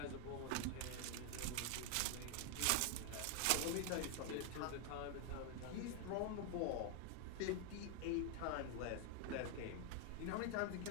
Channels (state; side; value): different; both; correlation 0.01